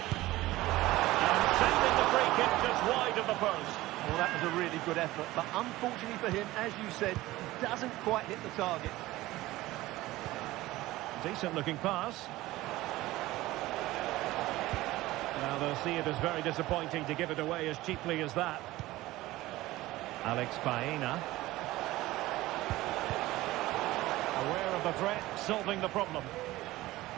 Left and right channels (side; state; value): left; quieter; 17.7 dB